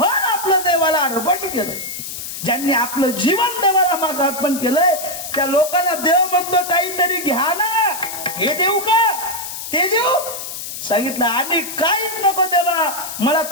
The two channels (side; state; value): left; noise; hiss, 8 dB below the sound